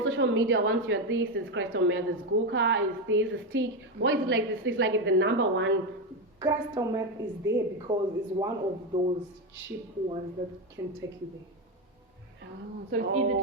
social media, once you're this, it's crystal meth, it's Guka, it's this, it's stick. Why is it like this? It's like the number one. Crystal meth is there because it's one of those cheap ones that can take you there. Oh, so it's easy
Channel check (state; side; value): normal; both; correlation 0.11